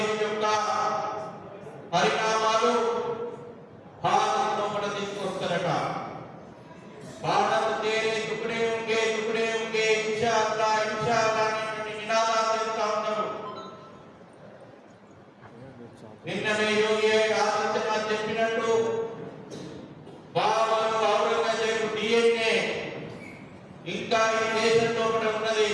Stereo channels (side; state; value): both; identical; correlation 1.00